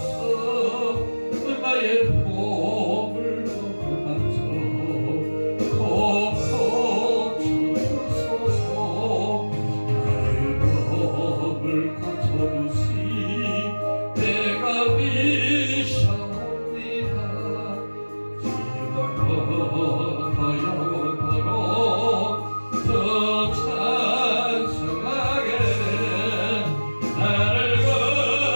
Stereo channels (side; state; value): both; inverted; correlation -1.00